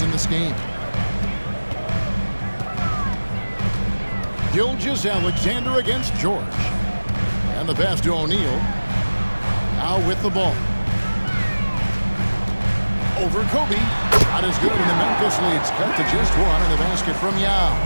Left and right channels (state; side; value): inverted; both; correlation -1.00